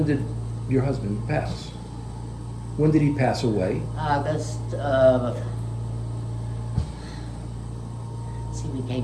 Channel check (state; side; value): identical; both; correlation 1.00